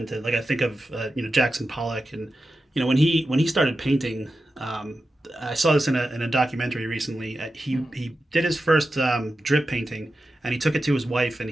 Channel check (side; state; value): both; normal; correlation 0.91